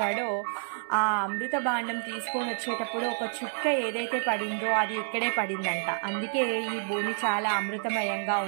ఆ అమృత భాండం తీసుకొని వచ్చేటప్పుడు ఒక చుక్క ఏదైతే పడిందో అది ఇక్కడే పడిందంట. అందుకే ఈ భూమి చాలా అమృతమయంగా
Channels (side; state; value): left; silent; digital silence